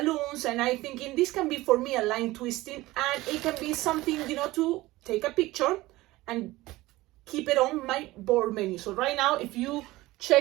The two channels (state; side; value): quieter; left; 18.7 dB